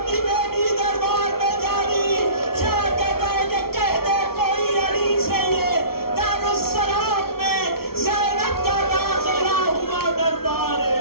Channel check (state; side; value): late; right; 0.94 ms